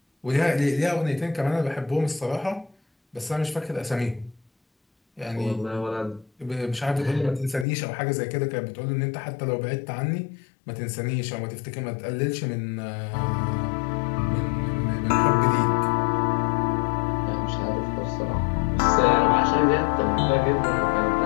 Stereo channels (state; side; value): drops out; right; at 7.7 s